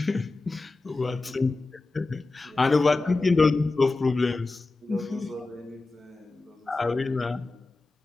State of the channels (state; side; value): quieter; right; 3.3 dB